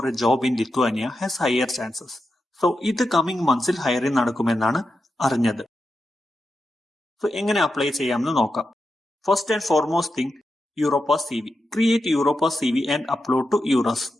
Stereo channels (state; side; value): normal; both; correlation 0.88